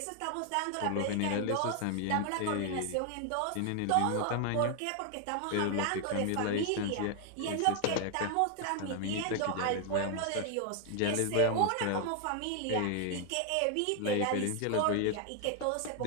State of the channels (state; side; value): different; both; correlation 0.00